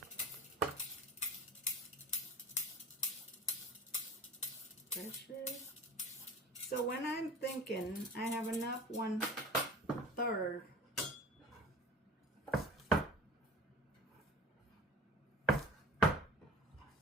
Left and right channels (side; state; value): both; normal; correlation 0.38